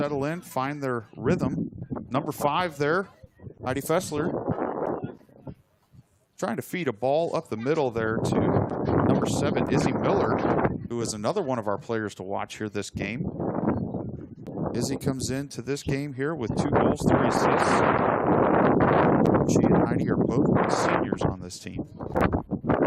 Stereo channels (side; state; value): both; identical; correlation 1.00